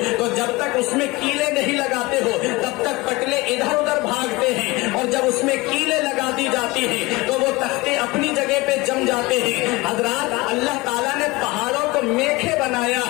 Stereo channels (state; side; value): quieter; right; 22.4 dB